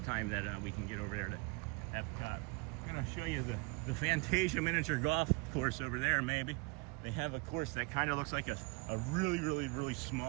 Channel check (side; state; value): left; quieter; 27.5 dB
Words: time that we can get over there to EPCOT. I'm gonna show you the Fantasia miniature golf course over there, maybe. They have a course that kind of looks like a really